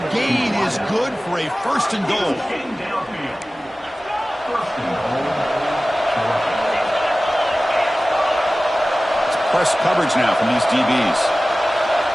gain is good for a 1st and goal. It's press coverage now from these DBs.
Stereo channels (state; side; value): normal; both; correlation 0.97